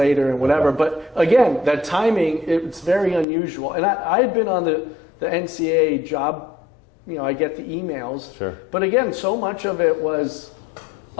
and whatever. Okay. But again, that timing, it's very unusual. And I had been on the NCAA job, I get the emails. Sure. But again, so much of it was,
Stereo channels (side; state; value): right; drops out; at 3.2 s